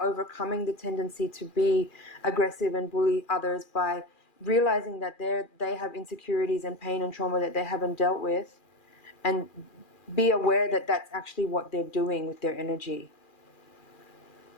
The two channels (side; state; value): right; late; 2.4 ms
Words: the tendency to be aggressive and bully others, by realizing that they have insecurities and pain and trauma that they haven't dealt with, and be aware that that's actually what they're doing with their energy.